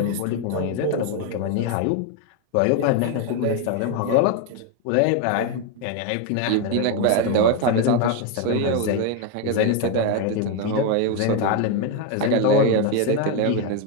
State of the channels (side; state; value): both; different; correlation 0.02